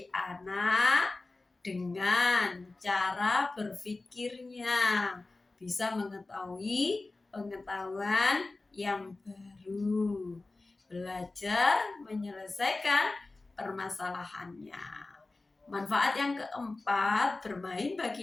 anak dengan cara berpikirnya, bisa mengetahui pengetahuan yang baru, belajar menyelesaikan permasalahannya. Manfaat yang keempat bermain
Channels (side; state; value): right; quieter; 3.3 dB